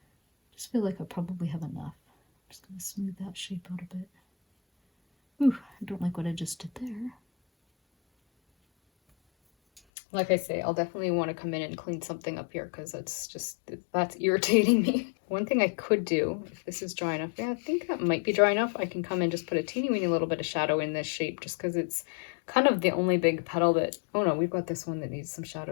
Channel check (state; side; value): drops out; right; at 9.8 s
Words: just feel like I probably have enough. I'm just going to smooth that shape out a bit. Ooh, I don't like what I just did there. Like I say, I'll definitely want to come in and clean something up here, because that's irritating me. One thing I could do, if this is dry enough, yeah, I think that might be dry enough. I can come and just put a teeny weeny little bit of shadow in this shape, just because it's kind of the only big petal that, oh no, we've got this one that needs some